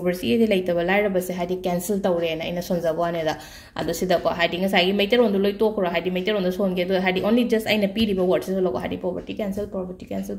ꯂꯩꯇꯕ ꯂꯥꯏꯔꯕꯁꯦ ꯍꯥꯏꯗꯤ ꯀꯦꯟꯁꯦꯜ ꯇꯧꯔꯦꯅ ꯑꯩꯅ ꯁꯣꯟꯖꯕ ꯋꯥꯅꯦꯗ ꯑꯗꯣ ꯁꯤꯗꯀꯣ ꯍꯥꯏꯗꯤ ꯉꯁꯥꯏꯒꯤ ꯃꯩꯇꯩꯔꯣꯟꯗꯣ ꯂꯣꯏ ꯇꯣꯛꯈ꯭ꯔꯣ ꯍꯥꯏꯗꯤ ꯃꯩꯇꯩꯔꯣꯟꯗ ꯁꯣꯟꯒꯦ ꯑꯗꯣ ꯍꯥꯏꯗꯤ ꯑꯣꯟꯂꯤ ꯖꯁ ꯑꯩꯅ ꯄꯤꯔꯤꯕ ꯋꯥꯔꯗꯁꯤꯁꯨ ꯂꯧꯀꯣ ꯍꯥꯏꯗꯤ poverty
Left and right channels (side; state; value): both; identical; correlation 1.00